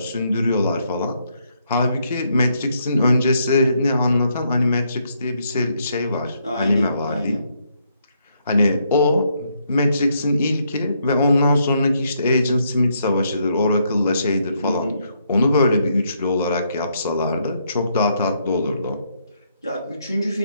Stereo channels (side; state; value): both; inverted; correlation -0.75